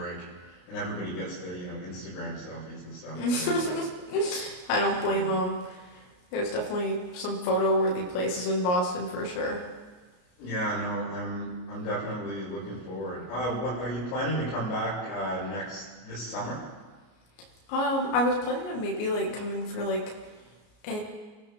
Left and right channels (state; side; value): late; right; 33 ms